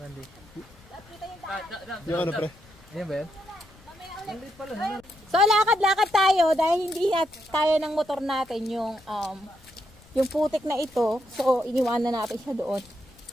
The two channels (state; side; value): noise; left; rumble, 25 dB below the sound